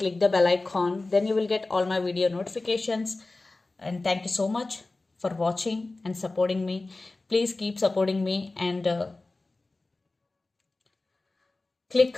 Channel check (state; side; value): quieter; right; 3.2 dB